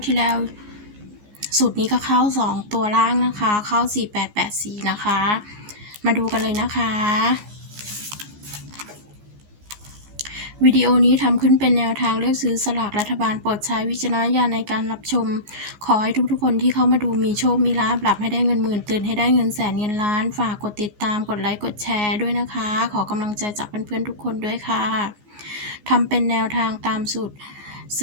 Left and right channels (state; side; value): late; left; 14 ms